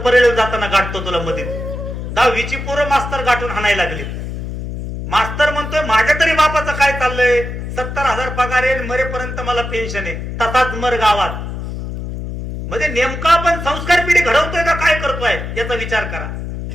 परेल जाताना गाठतो तुला मध्ये. 10वीची पोरं मास्तर गाठून हाणायला लागली. मास्तर म्हणतोय माझ्या तरी बापाचं काय चाललंय, 70,000 पगार आहे, मरेपर्यंत मला पेन्शन आहे, तसाच मर गावात. म्हणजे नेमका आपण संस्कार पिढी घडवतोय का काय करतोय याचा विचार करा.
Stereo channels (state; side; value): noise; left; hum, 6 dB below the sound